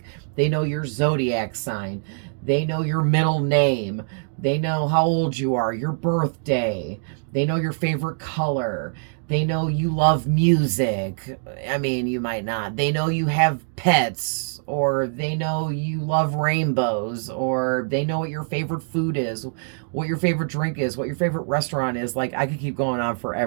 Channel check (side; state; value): left; silent; digital silence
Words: they know your zodiac sign. They know your middle name. They know how old you are, your birthday. They know your favorite color. They know you love music. I mean, you might not. They know you have pets, or they know you love rainbows, or they know what your favorite food is, what your favorite drink is, what your favorite restaurant is. Like, I could keep going on